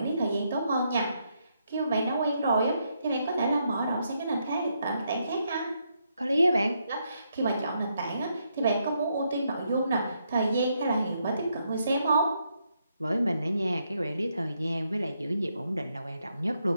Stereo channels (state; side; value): inverted; both; correlation -0.78